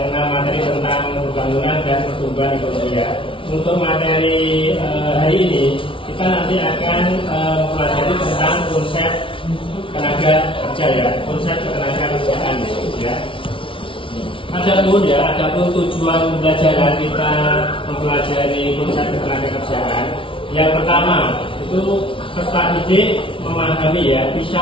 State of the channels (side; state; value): right; late; 0.25 ms